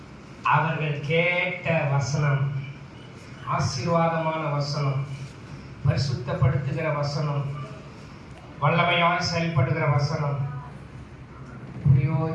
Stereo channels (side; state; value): both; identical; correlation 1.00